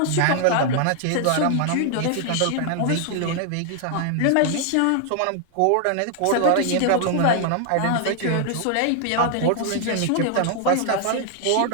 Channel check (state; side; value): different; both; correlation 0.00